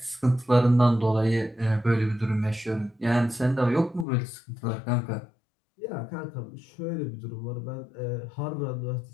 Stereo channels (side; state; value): right; drops out; at 4.0 s